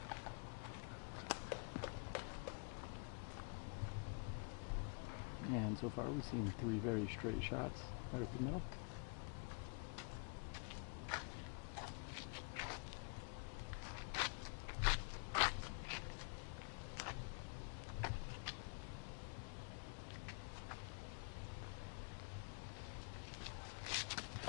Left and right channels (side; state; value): right; quieter; 33.7 dB